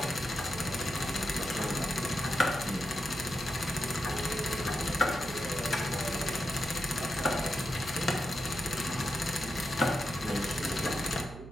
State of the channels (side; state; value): right; noise; hum, 14 dB below the sound